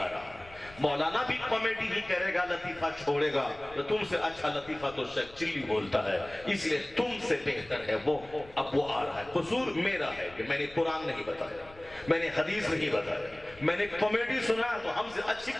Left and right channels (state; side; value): noise; left; rumble, 21 dB below the sound